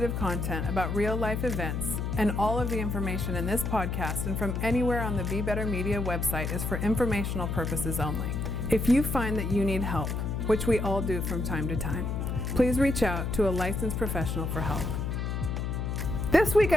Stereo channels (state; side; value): noise; left; hum, 1 dB below the sound